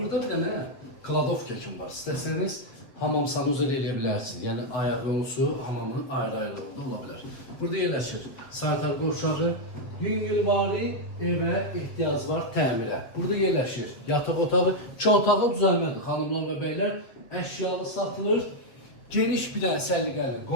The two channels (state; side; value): late; right; 7.2 ms